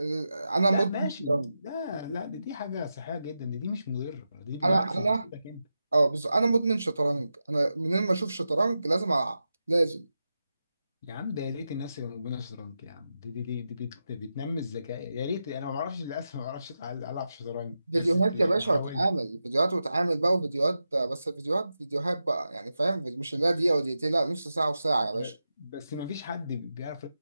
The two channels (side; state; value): both; inverted; correlation -0.90